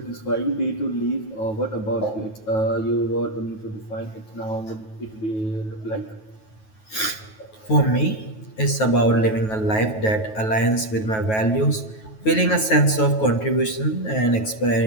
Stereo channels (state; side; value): late; right; 9.3 ms